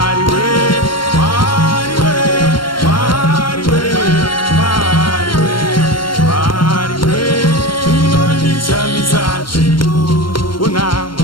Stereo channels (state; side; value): late; right; 0.72 ms